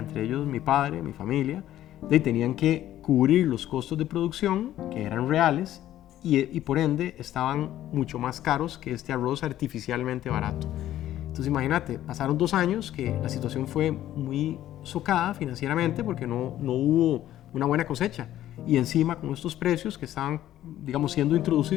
ellos mi padre, mi familia, tenían que cubrir los costos de producción que eran reales y por ende estaban mucho más caros que este arroz artificialmente barato. Entonces imagínate, pasaron 2 años que la situación fue muy socada financieramente porque no hubo una buena cosecha, y encima con estos precios que estaban, digamos, siendo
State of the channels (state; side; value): quieter; right; 12.9 dB